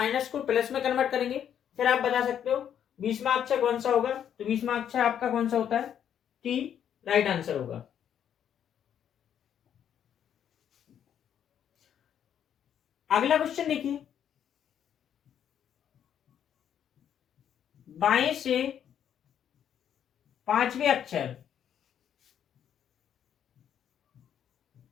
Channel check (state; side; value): quieter; right; 9.3 dB